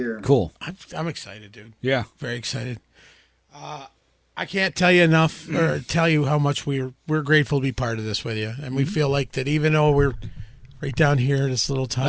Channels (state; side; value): identical; both; correlation 1.00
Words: Cool. I'm excited, dude. Yeah. Very excited. I can't tell you enough or tell you how much we're grateful to be part of this with you. And we feel like that even though we're right down here, this little